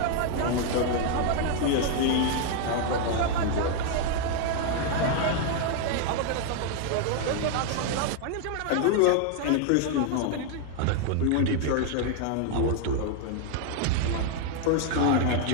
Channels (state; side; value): different; both; correlation 0.00